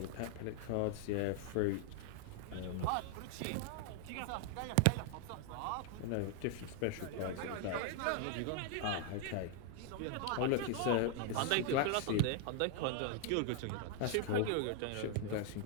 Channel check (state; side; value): different; both; correlation 0.00